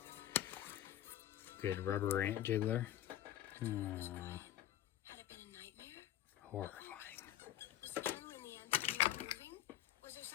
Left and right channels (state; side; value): quieter; right; 12.4 dB